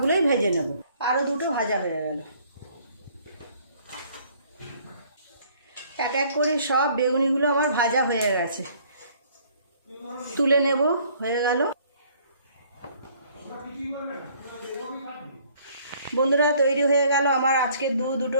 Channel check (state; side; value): inverted; both; correlation -0.59